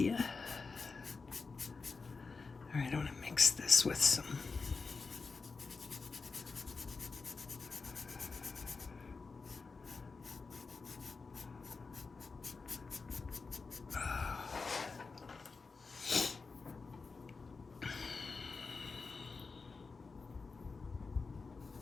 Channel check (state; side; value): quieter; right; 4.4 dB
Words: All right, I want to mix this with some